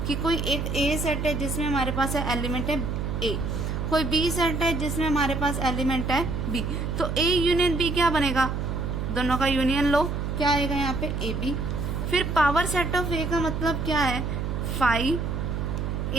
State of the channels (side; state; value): right; noise; hum, 2 dB below the sound